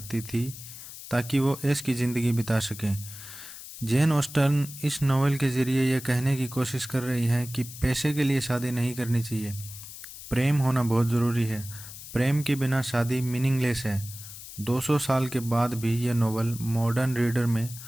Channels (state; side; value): noise; left; hiss, 13 dB below the sound